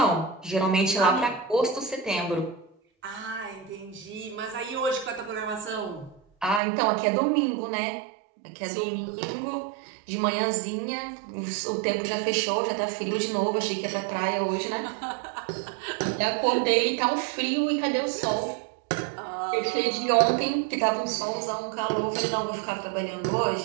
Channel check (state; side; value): drops out; left; at 6.6 s